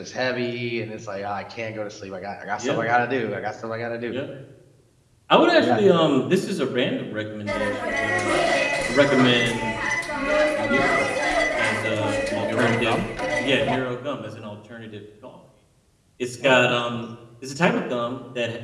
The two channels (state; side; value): identical; both; correlation 1.00